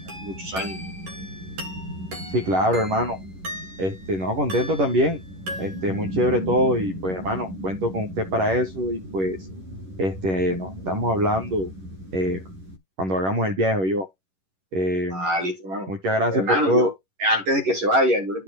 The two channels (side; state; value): left; late; 11 ms